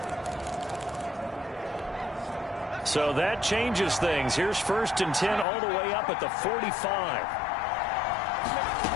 So that changes things. Here's 1st and 10 all the way up at the 45.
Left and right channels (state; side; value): drops out; right; at 5.5 s